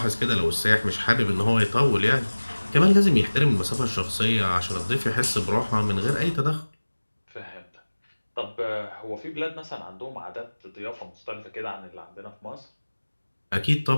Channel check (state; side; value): inverted; both; correlation -1.00